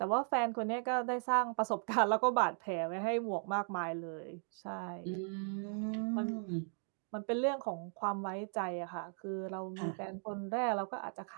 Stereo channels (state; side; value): silent; left; 53 dB below the other